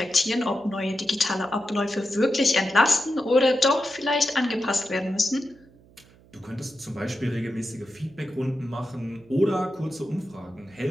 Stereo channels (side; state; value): right; noise; hum, 27 dB below the sound